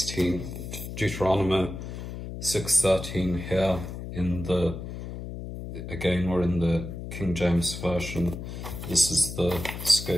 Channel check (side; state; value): left; noise; hum, 8 dB below the sound